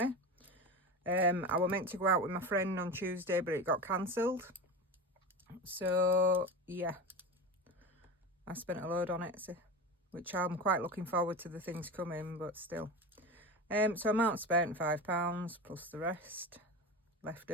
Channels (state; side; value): normal; both; correlation 0.26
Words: I were meant to go out with my friend on Tuesday, but it got cancelled. So yeah, I spent a load on Etsy, which I'm quite looking forward to the things coming, but still. So amount spent £5 plus the rest.